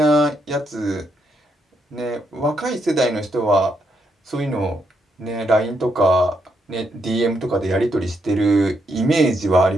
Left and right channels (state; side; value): normal; both; correlation 0.78